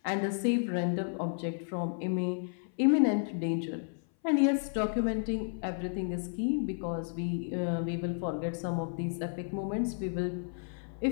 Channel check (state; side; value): silent; right; 56 dB below the other